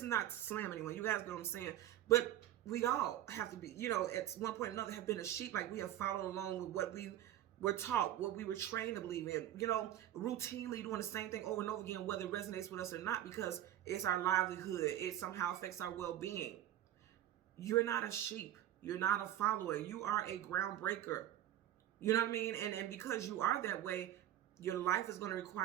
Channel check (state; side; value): quieter; left; 12.4 dB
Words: not to slam anyone. You guys know what I'm saying. But we all have to be, you know, at one point or another have been a sheep. Like, we have followed along with what we were taught, what we were trained to believe in, you know, routinely doing the same thing over and over again, whether it resonates with us or not, because it's our livelihood. It somehow affects our well-being. You're not a sheep. You're not a follower. You are a groundbreaker. You know what I mean? And because you are that way, your life is going to